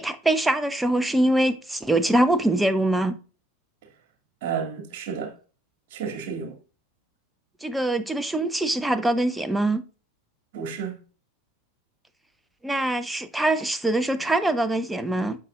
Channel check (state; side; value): normal; both; correlation 0.80